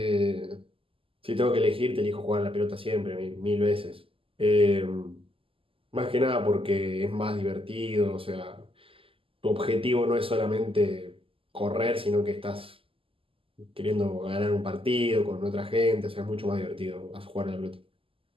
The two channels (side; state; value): left; late; 0.26 ms